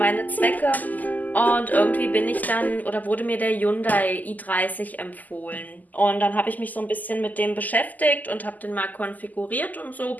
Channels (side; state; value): right; late; 0.081 ms